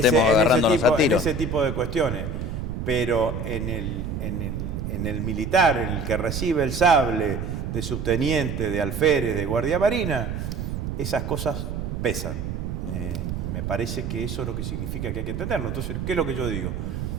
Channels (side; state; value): right; noise; rumble, 4 dB below the sound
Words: agarrándonos a tiros. En ese tipo de cuestiones. Pero en el militar, en el que recibe el sable de subteniente, de alférez, de guardia marina, esas cosas pesan. Me parece que eso es lo que significa que hay que entenderlo. Entonces, ¿qué es lo que yo digo?